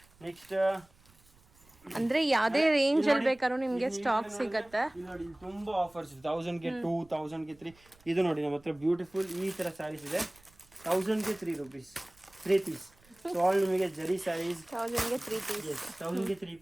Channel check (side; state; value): right; noise; rumble, 29 dB below the sound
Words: ನೆಕ್ಸ್ಟ್ ಅಂದ್ರೆ ಯಾವ್ದೇ ರೇಂಜ್ ಅಲ್ಲಿ ಬೇಕಾದ್ರೂ ನಿಮ್ಗೆ ಸ್ಟಾಕ್ ಸಿಗತ್ತೆ ನೋಡಿ ತುಂಬಾ ಆಫರ್ಸ್ ಇದೆ 1000 ಗೆ 2 1000 ಗೆ 3 ಇದು ನೋಡಿ ನಮ್ಮ ಹತ್ರ ಬ್ಯೂಟಿಫುಲ್ ಈ ತರ ಸ್ಯಾರೀಸ್ ಇದೆ 1000 ಗೆ 3 rupees 3 ಪೀಸ್ ಸೊ ಆಲ್ ನಿಮಗೆ ಜರಿ ಸ್ಯಾರೀಸ್ 1000 ಗೆ 3 ಪೀಸ್ 1000 ಗೆ 3